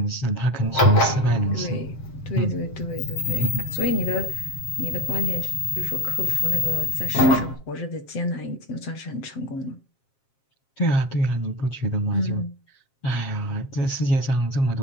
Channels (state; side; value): late; right; 7.5 ms